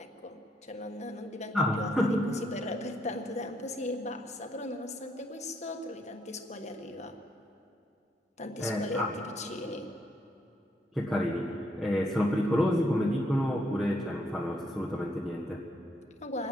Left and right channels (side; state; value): both; normal; correlation 0.74